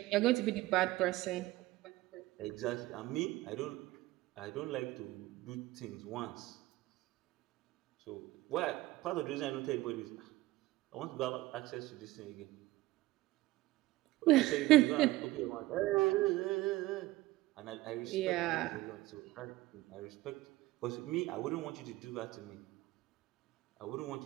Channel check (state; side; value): quieter; left; 18.3 dB